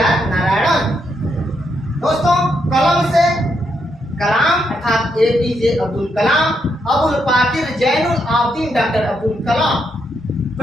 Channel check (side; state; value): both; normal; correlation 0.79